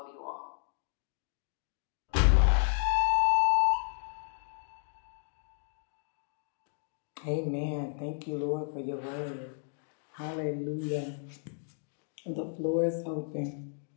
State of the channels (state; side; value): silent; right; digital silence